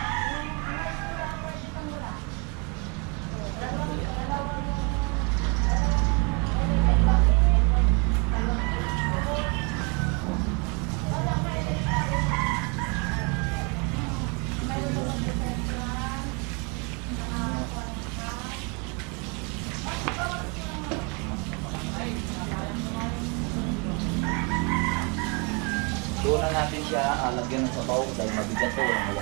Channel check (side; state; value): left; quieter; 32.8 dB